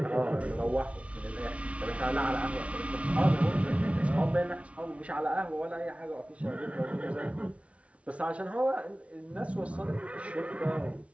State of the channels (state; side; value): late; left; 0.063 ms